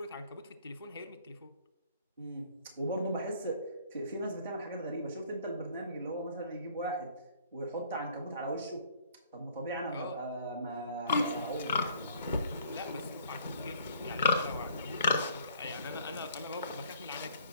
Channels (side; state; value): both; inverted; correlation -0.58